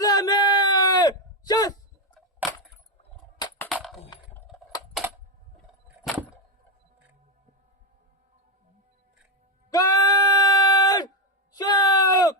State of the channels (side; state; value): both; normal; correlation 0.07